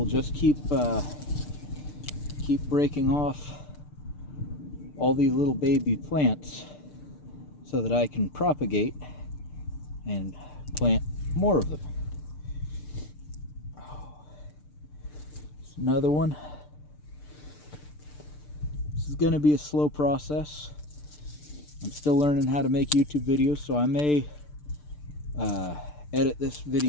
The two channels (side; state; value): right; late; 6.7 ms